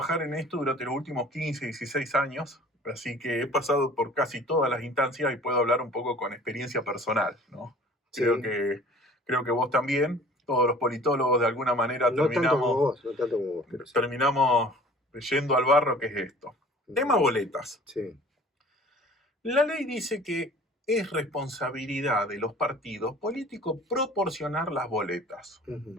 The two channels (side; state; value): both; normal; correlation 0.48